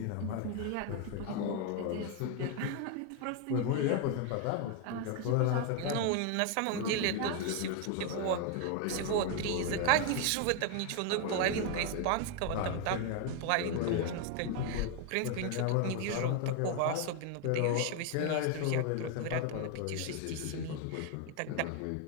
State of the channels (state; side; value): different; both; correlation 0.01